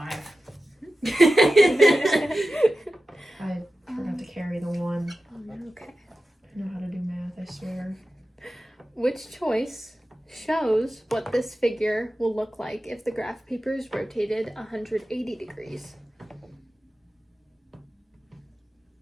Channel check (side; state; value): both; normal; correlation 0.93